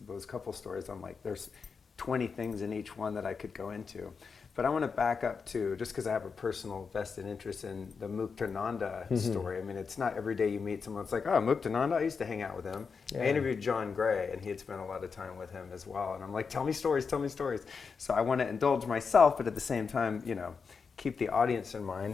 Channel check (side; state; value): right; quieter; 5.4 dB